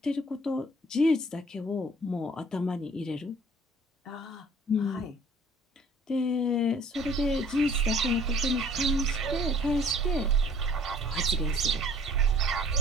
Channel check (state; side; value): normal; both; correlation 0.54